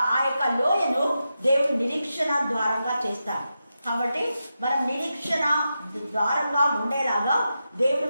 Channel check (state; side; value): inverted; both; correlation -0.89